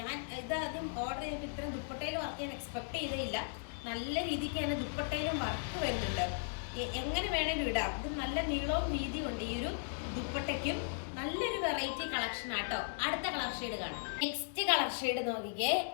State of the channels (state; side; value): silent; right; digital silence